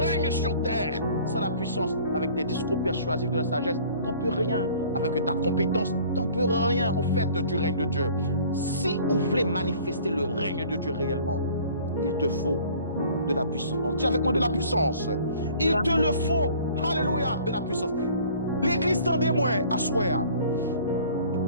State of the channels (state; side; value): inverted; both; correlation -0.50